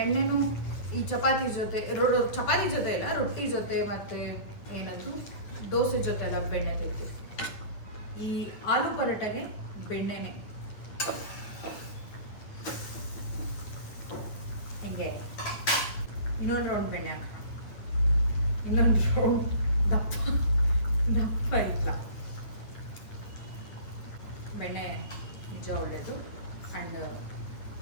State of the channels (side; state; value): right; late; 9.3 ms